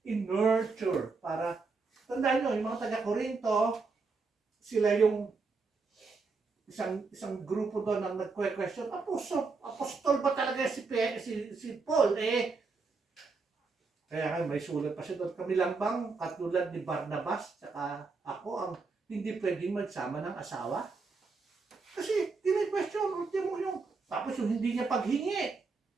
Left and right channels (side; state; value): left; quieter; 4.3 dB